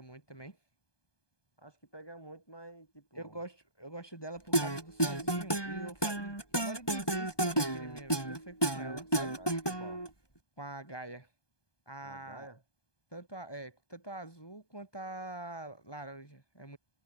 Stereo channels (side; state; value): right; late; 1.2 ms